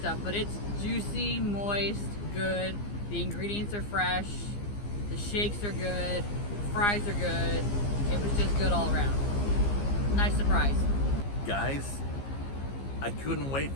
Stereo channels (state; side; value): late; right; 15 ms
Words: but it's juicy, moist, good. The ingredients are fresh. The shakes are good. The fries are good. It was just good all around. Nice surprise. Guys, I couldn't wait